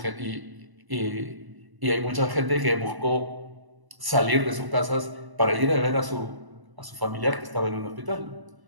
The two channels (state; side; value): late; left; 1.0 ms